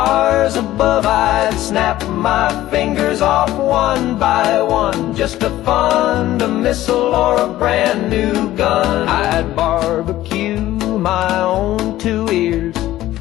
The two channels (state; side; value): quieter; right; 14.8 dB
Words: above. I'd snap my fingers off one by one just to fund a missile or a brand new gun. I'd barbecue my own 2 ears